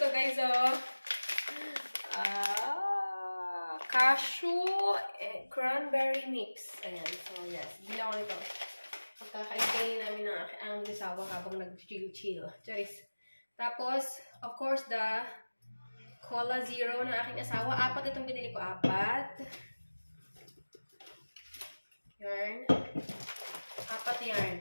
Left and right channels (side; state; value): both; inverted; correlation -1.00